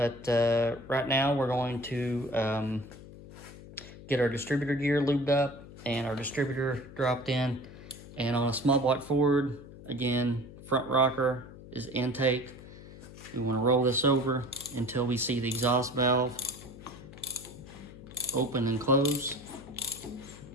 right now we're going to get our distributor gear lubed up and our distributor dropped in. And on a small block Ford, again, front rocker is intake. We want to roll this over until we see the exhaust valve open and close.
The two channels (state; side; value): noise; left; hum, 16 dB below the sound